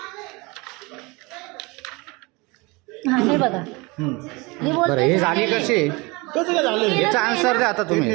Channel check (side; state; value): left; quieter; 25.8 dB